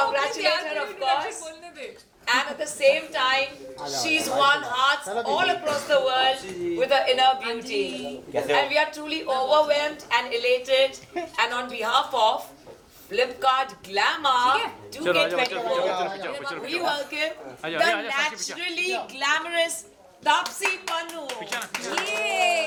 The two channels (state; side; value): identical; both; correlation 1.00